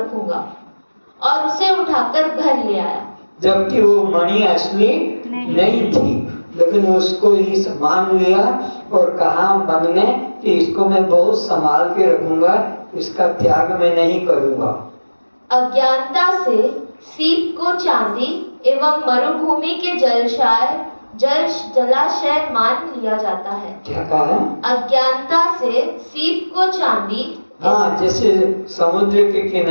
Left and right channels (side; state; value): both; inverted; correlation -1.00